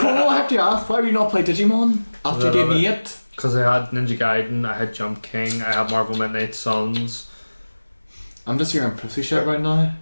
I have to ask, why have you not played Digimon after you gave me it? Because I had Ninja Gaiden, I had Jump King, I had Marvel Midnight Suns. I'm just hearing pussy shit right now.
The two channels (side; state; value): both; inverted; correlation -1.00